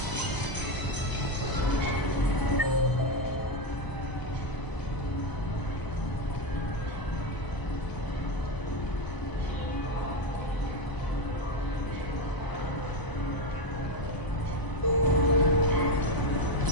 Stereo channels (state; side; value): late; right; 1.0 ms